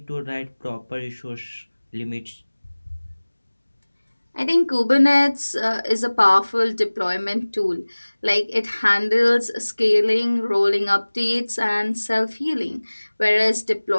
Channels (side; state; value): both; inverted; correlation -1.00